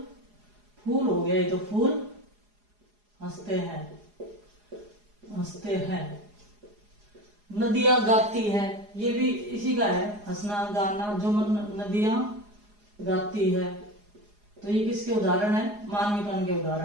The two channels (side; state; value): left; late; 4.8 ms